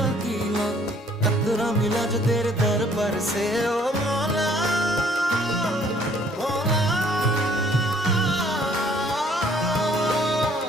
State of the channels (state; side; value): normal; both; correlation 0.60